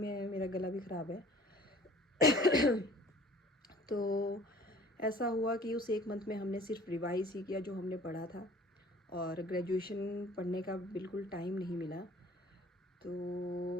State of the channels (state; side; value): normal; both; correlation 0.50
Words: गला भी ख़राब है। तो ऐसा हुआ कि उस 1 मंथ में हमने सिर्फ रिवाइज़ ही किया जो हमने पढ़ा था, और ग्रेजुएशन पढ़ने का बिल्कुल टाइम नहीं मिला। तो